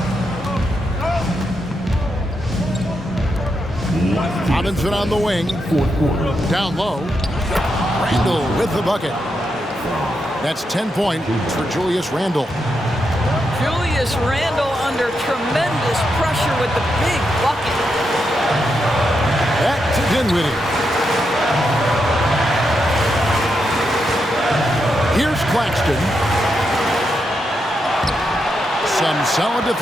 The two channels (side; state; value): both; normal; correlation 0.84